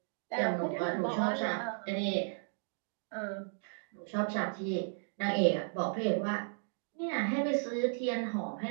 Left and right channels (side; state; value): left; silent; digital silence